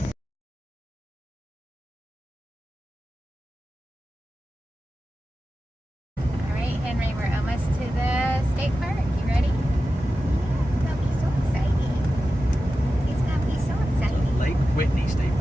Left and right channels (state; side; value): normal; both; correlation 0.93